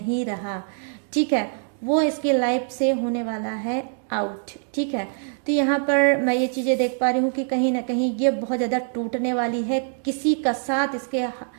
रहा, ठीक है, वो इसके लाइफ से होने वाला है आउट, ठीक है। तो यहाँ पर मैं ये चीज़ें देख पा रही हूँ कि कहीं ना कहीं ये बहुत ज़्यादा टूटने वाली है, किसी का साथ इसके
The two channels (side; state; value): left; silent; 63 dB below the other